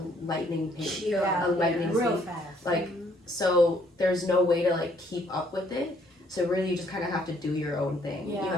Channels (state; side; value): normal; both; correlation 0.66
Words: lightning pace. A lightning real speed. fast. Like, so there's no way to like keep up with it. So really you just kind of have to do your own thing. You